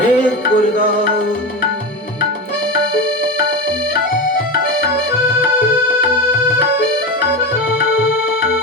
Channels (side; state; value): both; normal; correlation 0.20